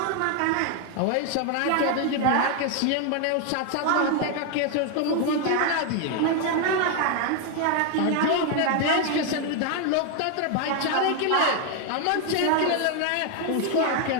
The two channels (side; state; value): both; different; correlation 0.01